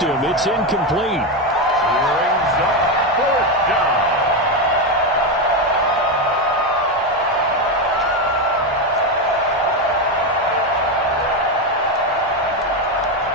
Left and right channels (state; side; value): normal; both; correlation 0.10